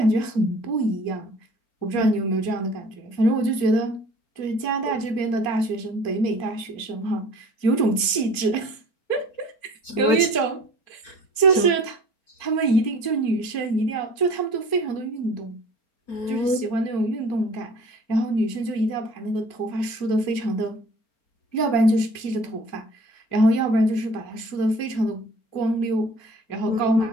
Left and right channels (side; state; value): right; late; 4.3 ms